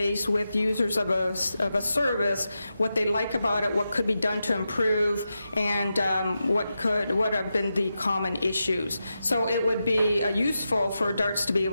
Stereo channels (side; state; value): both; inverted; correlation -0.89